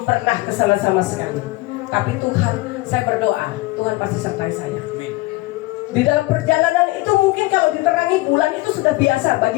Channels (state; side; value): quieter; right; 20.9 dB